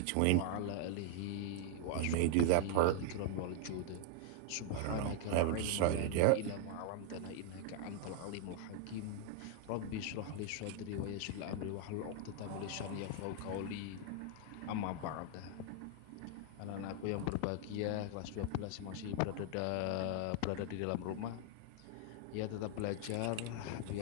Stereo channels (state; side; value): different; both; correlation 0.00